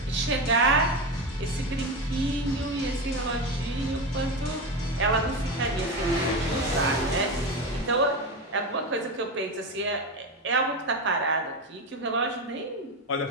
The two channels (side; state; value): both; normal; correlation 0.18